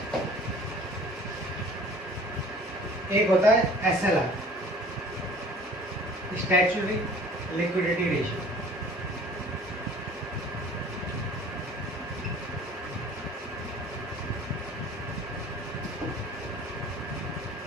एक होता है SLR, स्टैट्यूटरी लिक्विडिटी रेशियो।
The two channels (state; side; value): normal; both; correlation 0.49